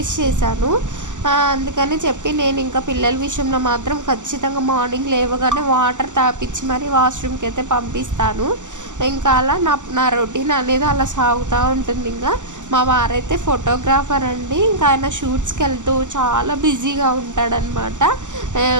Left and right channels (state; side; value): late; left; 0.86 ms